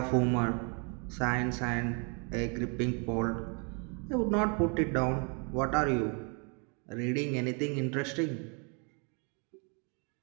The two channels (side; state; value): left; quieter; 36.0 dB